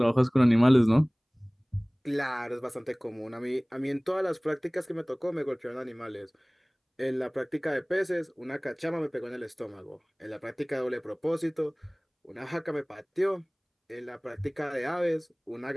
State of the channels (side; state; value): both; identical; correlation 1.00